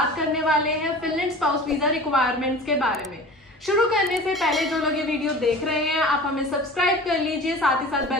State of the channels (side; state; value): both; normal; correlation 0.38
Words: करने वाले हैं फिनलैंड स्पाउस वीजा रिक्वायरमेंट्स के बारे में। शुरू करने से पहले जो लोग ये वीडियो देख रहे हैं, आप हमें सब्सक्राइब कर लीजिए, साथ ही साथ